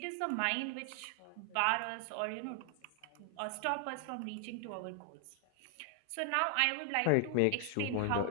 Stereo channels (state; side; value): different; both; correlation 0.00